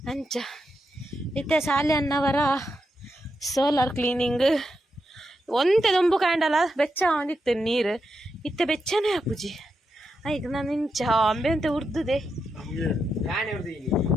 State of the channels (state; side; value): normal; both; correlation 0.85